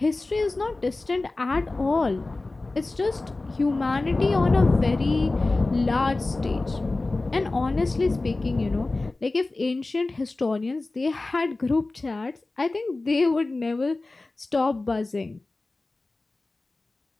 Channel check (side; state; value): right; quieter; 3.2 dB